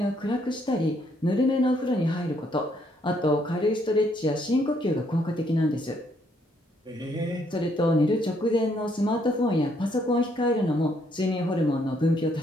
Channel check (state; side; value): normal; both; correlation 0.70